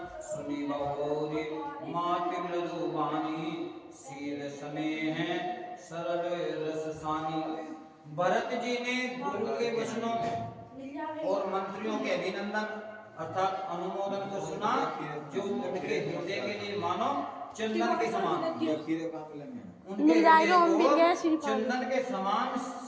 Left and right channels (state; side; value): identical; both; correlation 1.00